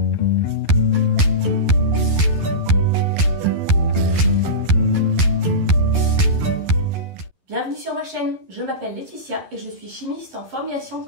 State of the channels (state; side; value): late; left; 11 ms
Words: Bienvenue sur ma chaîne, je m'appelle Laetitia et je suis chimiste en formulation